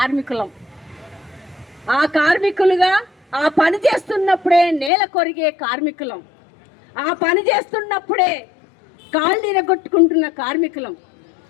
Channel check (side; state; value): right; drops out; at 4.9 s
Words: ఆ కార్మికులుగా ఆ పని చేస్తున్నప్పుడే నేల కొరిగే కార్మికులం. ఆ పని చేస్తున్నప్పుడే కాళ్ళు ఇరగొట్టుకుంటున్న కార్మికులం.